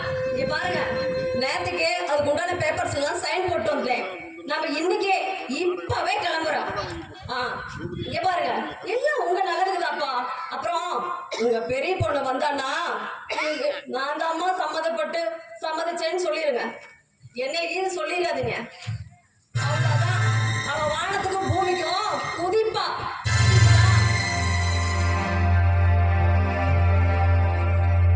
இங்க பாருங்க, நேரத்துக்கு அதுக்கு உண்டான பேப்பர்ஸ் எல்லாம் சைன் போட்டு வந்தேன். நம்ம இன்னைக்கே இப்பவே கிளம்புறோம். இங்க பாருங்க, எல்லாம் உங்க நல்லதுக்குதாப்பா. அப்புறம் உங்க பெரிய பொண்ணு வந்தான்னா நான் தான் அம்மா சம்மதிச்சேன்னு சொல்லிருங்க. என்ன இது சொல்லிடாதீங்க. அவ்வளவுதான், அவ வானத்துக்கும் பூமிக்கும் குதிப்பா.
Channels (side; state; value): both; identical; correlation 1.00